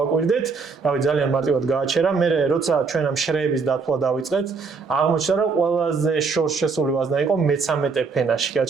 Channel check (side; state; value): left; quieter; 4.8 dB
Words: რავი ძალიან მარტივად გააჩერა. მე როცა ჩვენ ამ შრეების დათვლა დავიწყეთ, აღმოჩნდა რომ ყველაზე შორს შესული ვაზნა იყო მე-13 ფენაში